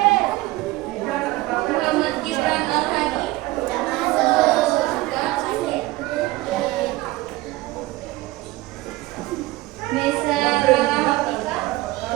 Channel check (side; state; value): left; quieter; 19.1 dB